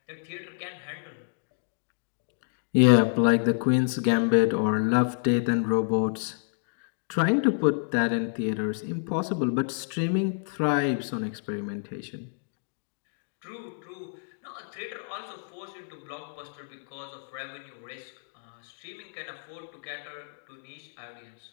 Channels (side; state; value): right; silent; digital silence